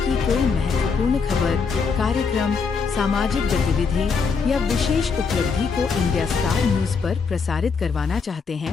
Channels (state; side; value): quieter; right; 5.2 dB